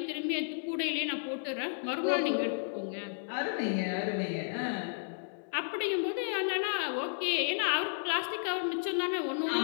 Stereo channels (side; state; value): right; silent; 56 dB below the other